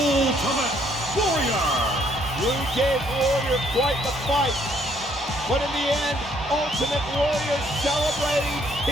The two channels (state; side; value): normal; both; correlation 0.67